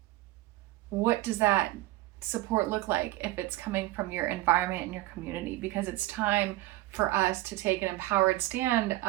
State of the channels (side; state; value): left; quieter; 17.7 dB